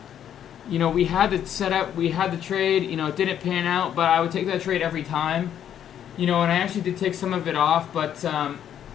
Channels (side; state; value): right; quieter; 9.8 dB